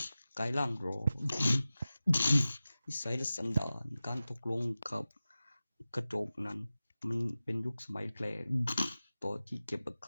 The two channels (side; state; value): both; inverted; correlation -0.96